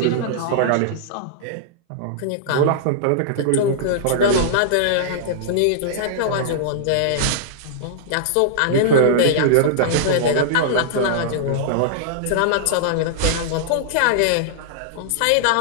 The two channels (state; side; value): different; both; correlation -0.02